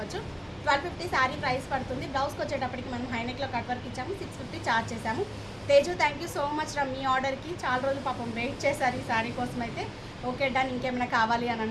1250 శారీ ప్రైస్ పడుతుంది. బ్లౌజ్కి వచ్చేటప్పటికి మనం హైనెక్లో కట్ వర్క్ ఇచ్చాము. 650 ఛార్జ్ చేసాము. Teju thank you so much రా, మీ ఆర్డర్కి చాలా రోజులు పాపం వెయిట్ చేశారు ఈ శారీ కోసం అయితే. Okay done. ఇంకేమైనా కావాలి అని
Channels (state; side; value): identical; both; correlation 1.00